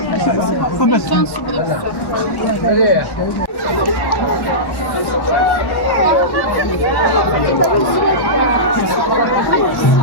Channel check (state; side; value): late; right; 1.1 ms